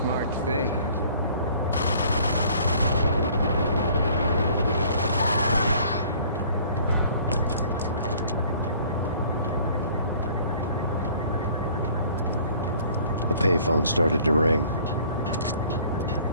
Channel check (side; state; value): both; inverted; correlation -0.54